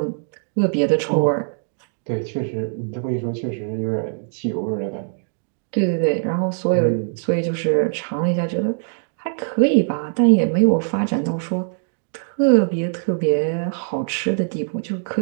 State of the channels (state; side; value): silent; left; digital silence